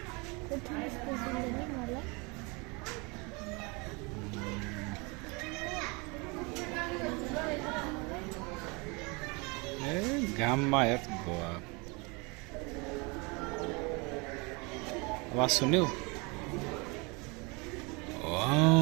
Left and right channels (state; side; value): quieter; left; 28.8 dB